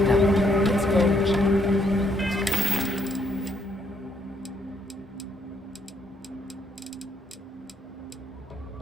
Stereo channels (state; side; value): normal; both; correlation 0.72